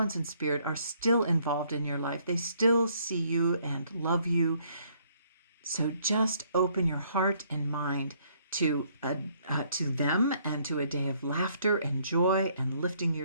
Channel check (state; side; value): inverted; both; correlation -0.66